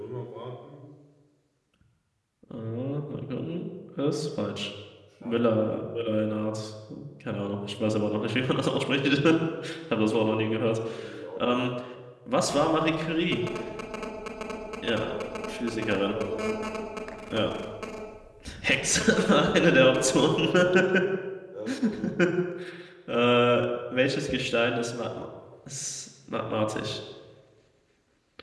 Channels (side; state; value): both; identical; correlation 1.00